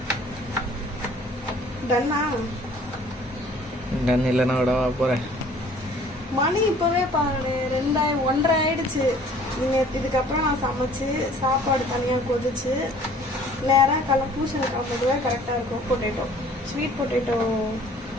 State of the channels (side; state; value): both; normal; correlation 0.53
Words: டன்னா? டன் இல்லைன்னா விடவா போகிறேன். மணி இப்போவே பாருங்க 1:30 ஆயிடுச்சு. நீங்கள் இதுக்கப்புறம் நான் சமைச்சு சாப்பாடு தனியாக கொதிச்சு நேராக பூசணி காப்பதுவே கரெக்டாக இருக்கும். பொட்டேட்டோ, ஸ்வீட் பொட்டேட்டோ